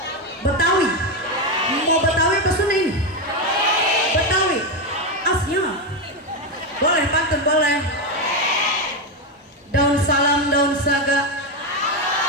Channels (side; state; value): both; normal; correlation 0.09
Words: Betawi. Mau Betawi ke Sunda ini? Betawi. Asnya. Boleh pantun, boleh. Daun salam, daun saga.